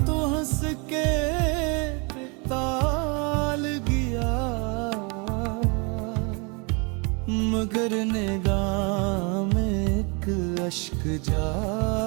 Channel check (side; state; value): left; quieter; 32.1 dB